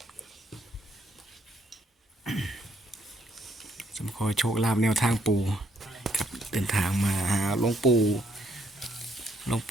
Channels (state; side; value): normal; both; correlation 0.71